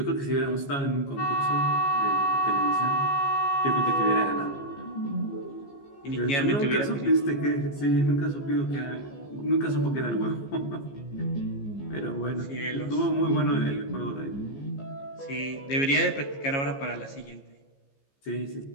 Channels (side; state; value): right; late; 15 ms